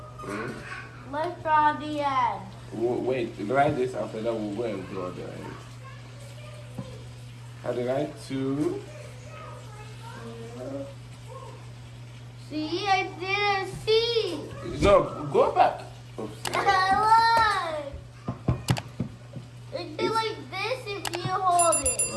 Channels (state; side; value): identical; both; correlation 1.00